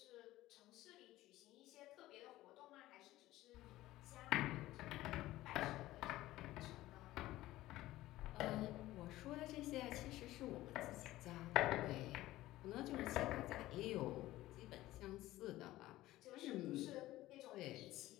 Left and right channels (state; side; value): quieter; right; 16.3 dB